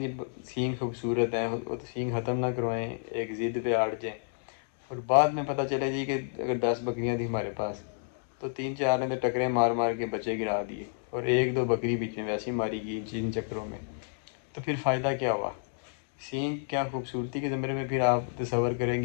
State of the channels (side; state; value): right; silent; digital silence